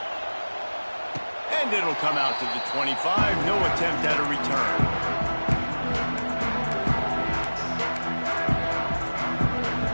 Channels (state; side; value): inverted; both; correlation -1.00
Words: And it'll come out to the 25. No attempt at a return.